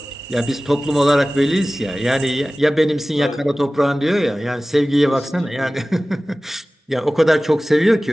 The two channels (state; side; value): normal; both; correlation 0.97